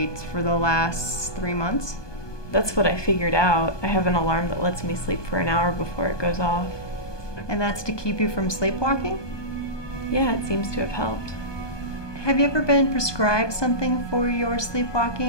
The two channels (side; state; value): right; late; 1.2 ms